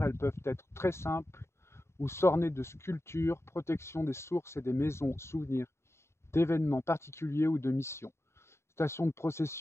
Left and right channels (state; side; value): late; right; 0.13 ms